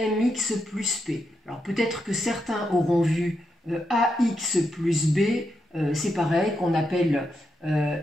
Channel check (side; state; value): both; normal; correlation 0.83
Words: plus p. Alors peut-être que certains auront vu ax plus b, c'est pareil, qu'on appelle